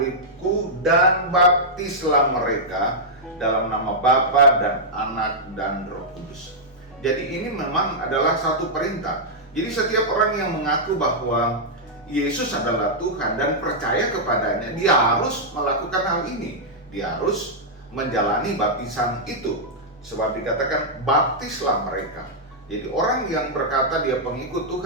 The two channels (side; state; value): both; normal; correlation -0.08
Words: dan baptislah mereka dalam nama Bapa dan Anak dan Roh Kudus. Jadi ini memang adalah satu perintah. Jadi setiap orang yang mengaku bahwa Yesus adalah Tuhan dan percaya kepadanya, dia harus melakukan hal ini. Dia harus menjalani baptisan itu. Sebab dikatakan baptislah mereka. Jadi orang yang berkata dia pengikut